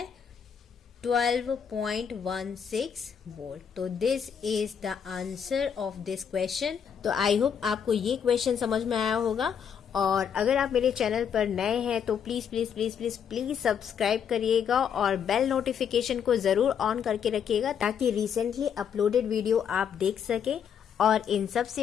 12.16 वोल्ट। तो this is the answer of this question. तो आई होप आपको ये क्वेश्चन समझ में आया होगा, और अगर आप मेरे चैनल पर नए हैं तो please please please please please subscribe करिएगा और बेल नोटिफिकेशन को जरूर ऑन करके रखिएगा ताकि रिसेंटली अपलोडेड वीडियो आप देख सके। और इन सब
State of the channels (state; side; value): quieter; right; 7.7 dB